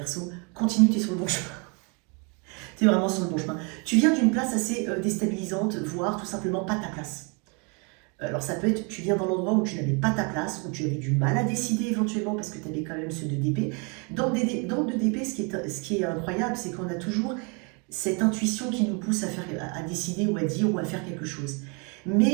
continue, tu es sur le bon chemin. Tu es vraiment sur le bon chemin. Tu viens d'une place assez déstabilisante, voire tout simplement pas ta place. Alors ça peut être, tu viens dans l'endroit où tu n'avais pas ta place, où tu avais du mal à décider éventuellement parce que tu avais quand même ce 2 d'épée. Dans le 2 d'épée, ce qui est incroyable, c'est qu'on a toujours cette intuition qui nous pousse à décider ou à dire ou à faire quelque chose.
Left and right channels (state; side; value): quieter; left; 33.5 dB